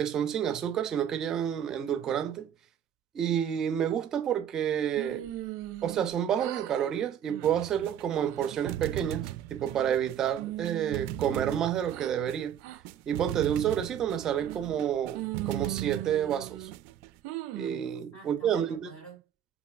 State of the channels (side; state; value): left; quieter; 9.4 dB